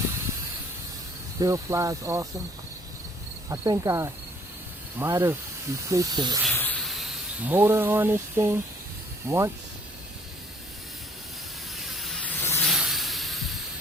Still flies awesome. I think I might have replaced the motor on this thing once.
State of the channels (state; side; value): normal; both; correlation 0.60